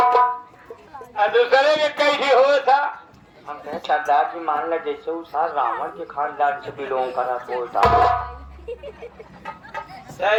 दूसरे के कैसे हो था? हम कहे सरदार जी मान ला जैसे उस रावण के खानदान से बिलोंग करा बोलता।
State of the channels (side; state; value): both; identical; correlation 1.00